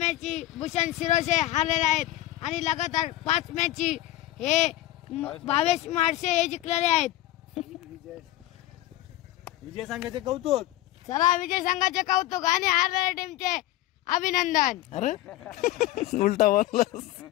भूषण शिरोसे हारलेले आहेत आणि लगातार 5 मॅची हे 22 मार्च हे जिंकलेले आहेत. विजय संघाचे कौतुक. चला विजय संघाचे कौतुक आणि हारलेल्या टीमचे अभिनंदन. अरे उलटा बोललास.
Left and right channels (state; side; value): quieter; right; 15.4 dB